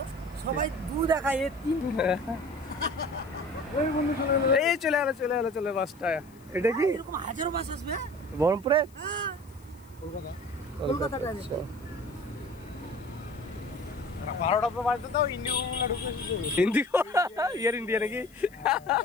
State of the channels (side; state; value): left; noise; hiss, 28 dB below the sound